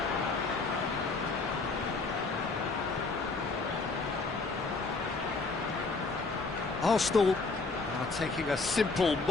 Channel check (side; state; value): right; quieter; 3.9 dB